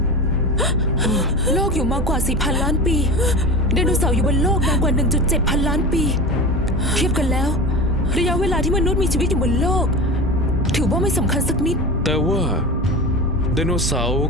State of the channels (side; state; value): both; normal; correlation 0.28